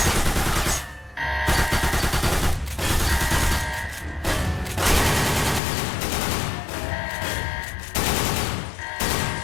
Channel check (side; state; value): right; drops out; at 5.6 s